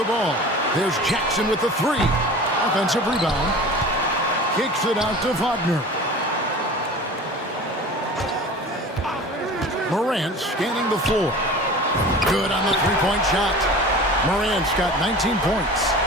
ball. There's Jackson with the three. Offensive rebound. Kicks it out to Wagner. Morant scanning the floor. Good on the three-point shot. Morant's got 19 points.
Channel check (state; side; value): normal; both; correlation 0.38